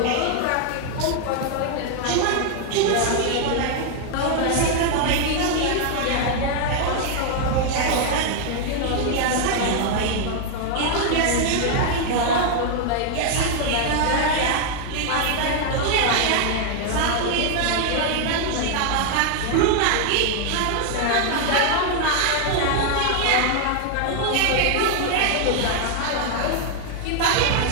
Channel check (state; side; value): different; both; correlation 0.00